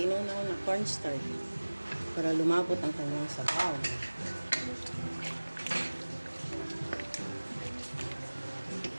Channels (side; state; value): both; inverted; correlation -1.00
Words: na cornstarch para lumapot ang kanyang sabaw.